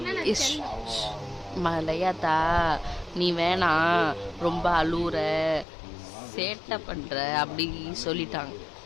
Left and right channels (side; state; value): right; drops out; at 5.7 s